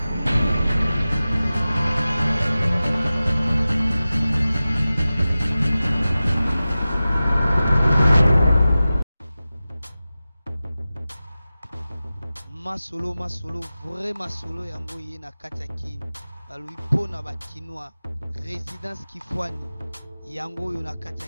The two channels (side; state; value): both; inverted; correlation -0.96